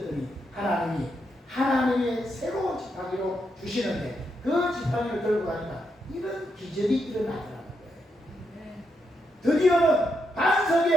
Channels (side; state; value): both; normal; correlation 0.81